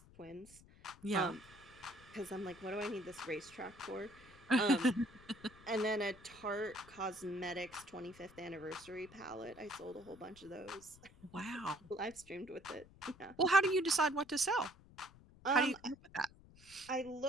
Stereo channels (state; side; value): noise; left; rumble, 22 dB below the sound